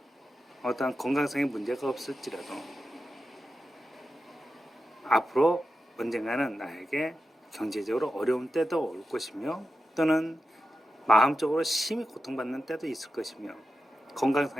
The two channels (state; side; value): normal; both; correlation 0.91